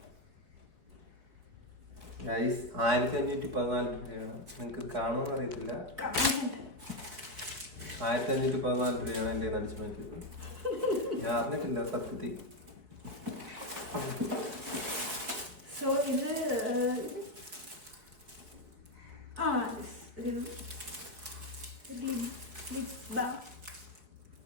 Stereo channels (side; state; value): left; late; 4.7 ms